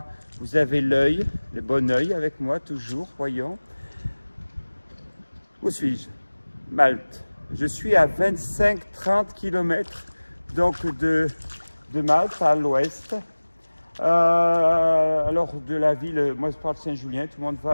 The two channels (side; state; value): both; inverted; correlation -1.00